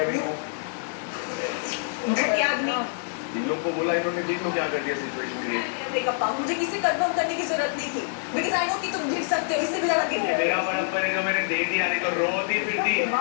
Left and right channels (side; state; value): right; silent; digital silence